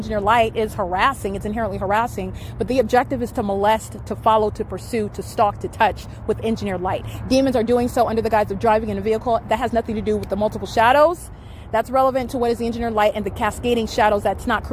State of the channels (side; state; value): both; identical; correlation 1.00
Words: light is harassing. It's inherently harassing. But the objective is to molest, to follow, to pursue, to stalk, to touch with engineered light. Demons are doing so under the guise of driving in a vehicle. That has nothing to do with the multiple shadows. That's relevant to what is the engineered light and the cascading shadows that's not